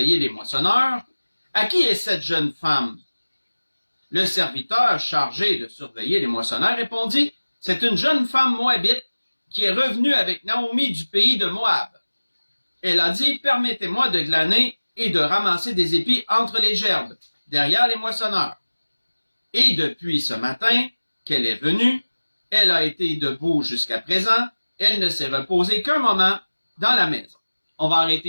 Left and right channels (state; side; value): inverted; both; correlation -1.00